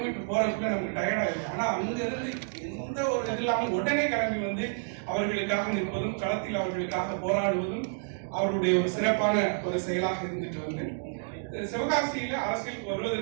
போறதுக்குள்ள நமக்கு டயர்ட் ஆயிடும். ஆனா அங்க இருந்து எந்த ஒரு இது இல்லாமல் உடனே கிளம்பி வந்து அவர்களுக்காக நிற்பதும், களத்தில் அவர்களுக்காக போராடுவதும் அவருடைய ஒரு சிறப்பான ஒரு செயலாக இருந்துட்டு வந்து சிவகாசியில அரசியலுக்கு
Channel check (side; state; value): left; silent; digital silence